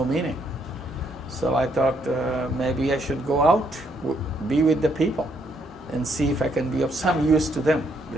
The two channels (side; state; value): both; normal; correlation 0.72